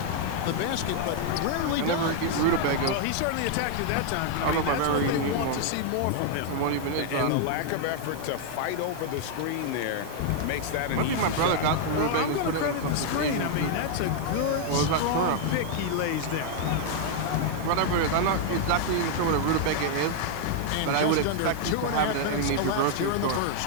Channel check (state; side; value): different; both; correlation 0.00